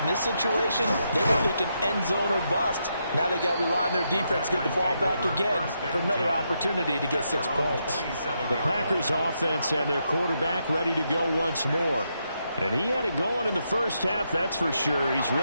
this situation they were thinking end zone or bust. Now they got to rely on their defense, get the ball back again for another opportunity to get 6 points. The Packers offense and their quarterback ready to go once more. And he had it going in the first half, that's for sure. He's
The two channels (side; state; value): both; inverted; correlation -0.81